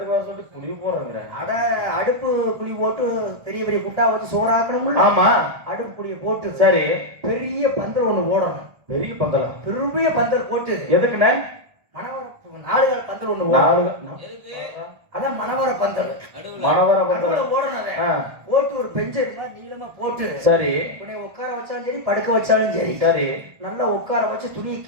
வர சொல்லிட்டு குழி போடுறேங்க? அட அடுப்பு குழி போட்டு பெரிய பெரிய குட்டா வச்சு சோறாக்கணும்ல. ஆமா, அடுப்பு குழியை போட்டு சரி பெரிய பந்தல் ஒண்ணு போடணும். பெரிய பந்தலா? பெரிய பந்தல் போட்டு எதுக்குண்ணே? மணவர 4 கால் பந்தல் ஒண்ணு போடணும். அதான் மணவர பந்தல். மணவர பந்தல் போடணும். போட்டு ஒரு பெஞ்சு மாதிரி நீளமா போட்டு சரி உன்னை உட்கார வச்சாலும் சரி படுக்க வச்சாலும் சரி சரி நல்லா உட்கார வச்சு துணியை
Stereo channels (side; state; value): left; late; 1.4 ms